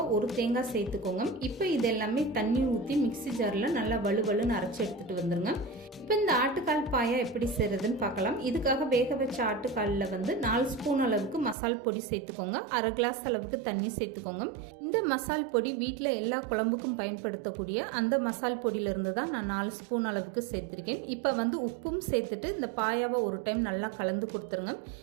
1 தேங்காய் சேர்த்துக்கோங்க. இப்போ இது எல்லாமே தண்ணி ஊற்றி மிக்சி ஜாரில் நல்லா வலுவலுன்னு அரைச்சி எடுத்துகிட்டு வந்துருங்க. இப்போ இந்த ஆட்டுக்கால் பாயா எப்படி செய்கிறதுன்னு பார்க்கலாம். இதுக்காக வேக வச்ச ஆட்டுக்காலில் 4 ஸ்பூன் அளவுக்கு மசால் பொடி சேர்த்துக்கோங்க. 1/2 கிளாஸ் அளவுக்கு தண்ணி சேர்த்துக்கோங்க. இந்த மசால் பொடி வீட்டில் எல்லா குழம்புக்கும் பயன்படுத்தக்கூடிய அந்த மசால் பொடியிலிருந்து தான் நான் 4 ஸ்பூன் அளவுக்கு சேர்த்துருக்கேன். இப்போ உப்பும் சேர்த்துட்டு இந்த பாயாவை ஒரு டைம் நல்லா கலந்து கொடுத்துருங்க.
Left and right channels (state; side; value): drops out; left; at 11.6 s